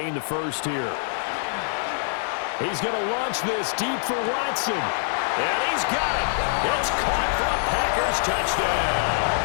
the first here. He's going to launch this deep for Watson. And he's got it. It's caught for a Packers touchdown.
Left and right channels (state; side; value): silent; right; 62 dB below the other